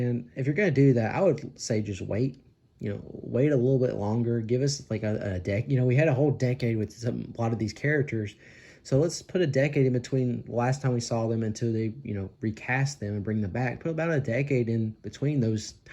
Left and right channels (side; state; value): both; identical; correlation 1.00